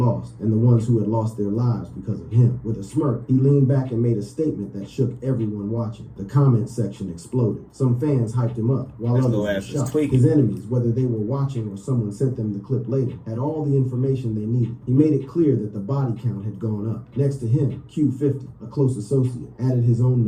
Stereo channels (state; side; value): identical; both; correlation 1.00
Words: and the ones who had lost their lives because of him. With a smirk, he leaned back and made a statement that shook everyone watching. The comment section exploded. Some fans hyped him up, while others were shocked. His enemies, whether they were watching or someone sent them the clip later, had all the information they needed. He made it clear that the body count had gone up. Next to him, Q50, a close associate, added his own